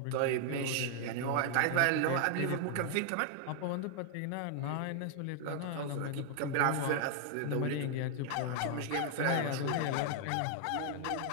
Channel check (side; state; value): both; different; correlation 0.00